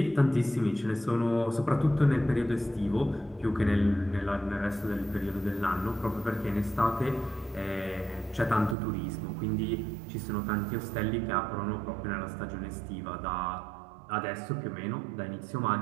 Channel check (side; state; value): left; drops out; at 8.8 s